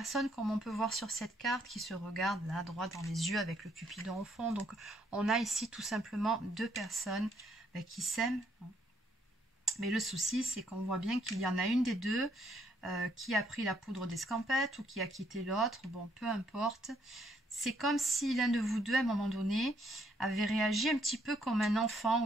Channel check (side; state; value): both; normal; correlation 0.70